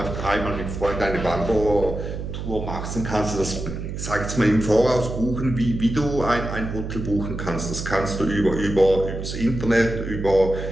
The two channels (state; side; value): noise; right; hum, 6 dB below the sound